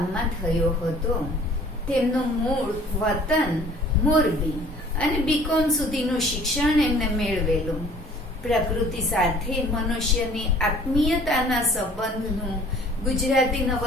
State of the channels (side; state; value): both; normal; correlation 0.52